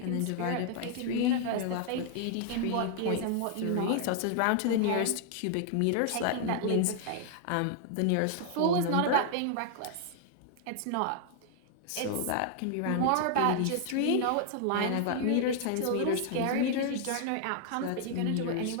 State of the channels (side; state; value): both; different; correlation 0.00